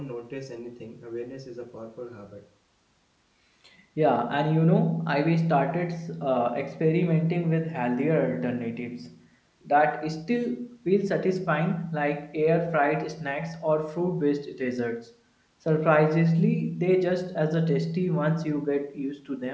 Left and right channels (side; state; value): both; identical; correlation 1.00